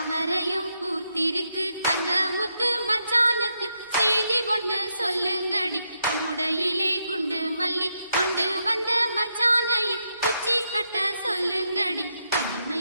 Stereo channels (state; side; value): inverted; both; correlation -0.82